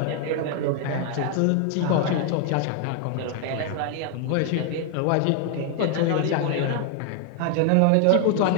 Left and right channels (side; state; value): both; different; correlation 0.00